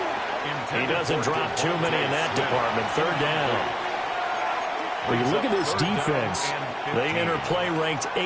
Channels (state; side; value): identical; both; correlation 1.00